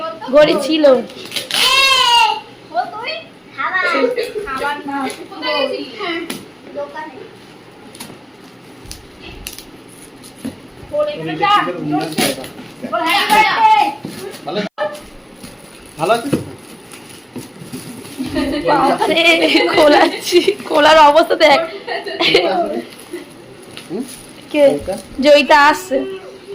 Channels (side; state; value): both; identical; correlation 1.00